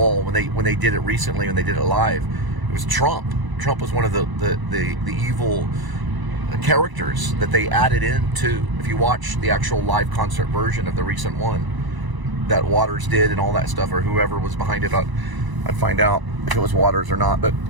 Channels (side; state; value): left; late; 1.0 ms